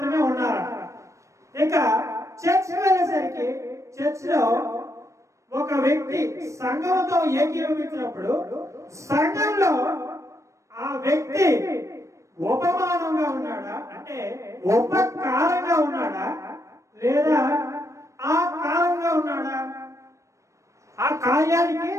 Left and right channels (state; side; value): late; left; 0.15 ms